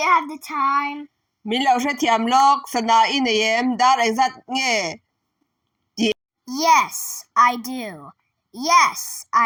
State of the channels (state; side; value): identical; both; correlation 1.00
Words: have the time? Milau she thiam lok sana in em dar exact nge. Yes, I do. Yes,